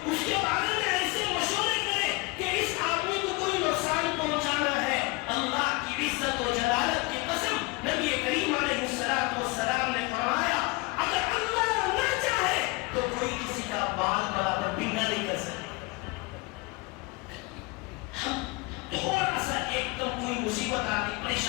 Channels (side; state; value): right; quieter; 25.2 dB